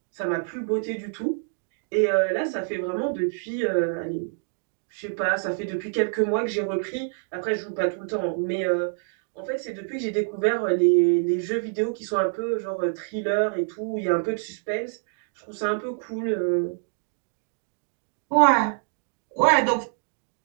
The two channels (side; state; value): left; silent; digital silence